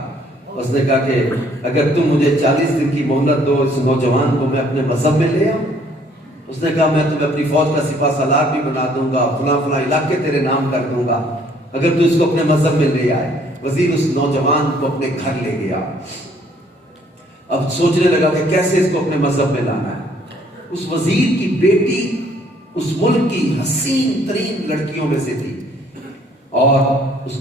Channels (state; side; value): normal; both; correlation 0.62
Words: उसने कहा कि अगर तुम मुझे 40 दिन की मोहलत दो, इस नौजवान को मैं अपने मजहब में ले आऊं। उसने कहा मैं तुम्हें अपनी फौज का सिपा सालार भी बना दूंगा, फला फला इलाके तेरे नाम कर दूंगा, अगर तू इसको अपने मजहब में ले आए। वजीर उस नौजवान को अपने घर ले गया। अब सोचने लगा कि कैसे इसको अपने मजहब में लाना है। उस वजीर की बेटी उस मुल्क की हसीन तरीन लड़कियों में से थी और